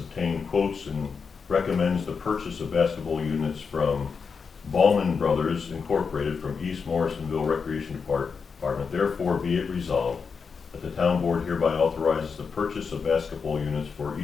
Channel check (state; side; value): quieter; right; 5.6 dB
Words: quotes and recommends the purchase of basketball units from Ballman Brothers Incorporated from East Morrisonville Recreation Department, therefore be it resolved that the town board hereby authorizes the purchase of basketball units for